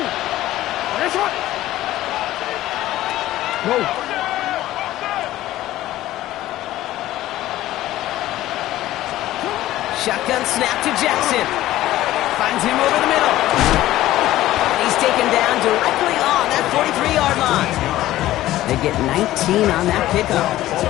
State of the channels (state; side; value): quieter; right; 15.0 dB